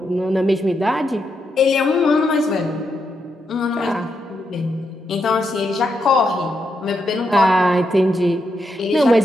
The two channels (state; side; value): normal; both; correlation 0.82